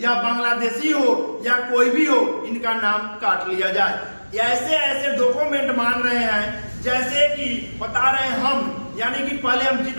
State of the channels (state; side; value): inverted; both; correlation -1.00